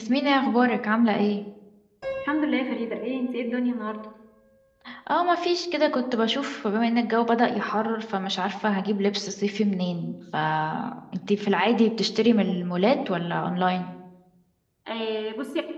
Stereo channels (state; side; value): identical; both; correlation 1.00